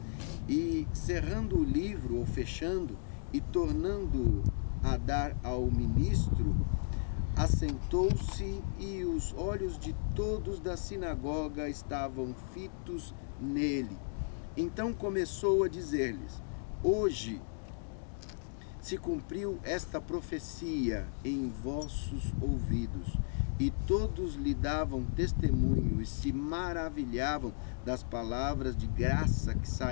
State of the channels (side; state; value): right; silent; digital silence